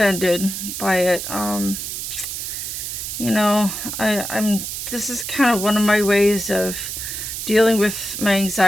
by it. This is kind of one of my ways of dealing with my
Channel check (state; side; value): noise; right; hiss, 5 dB below the sound